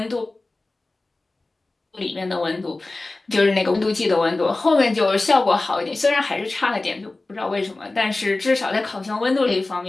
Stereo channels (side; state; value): right; quieter; 3.1 dB